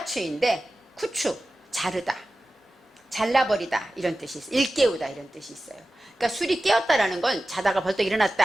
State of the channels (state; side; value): normal; both; correlation 0.95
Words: 쿠추, 자르다, 잘라버리다 이런 뜻이 있어요. 일깨우다 이런 뜻이 있어요. 그러니까 술이 깨었다라는 건 자다가 벌떡